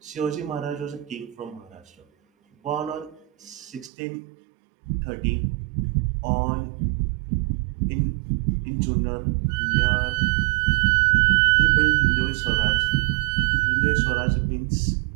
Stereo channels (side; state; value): left; drops out; at 3.9 s